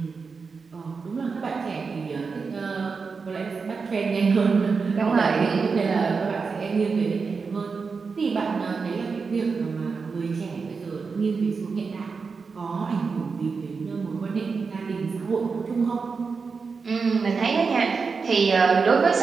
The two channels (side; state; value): left; quieter; 5.0 dB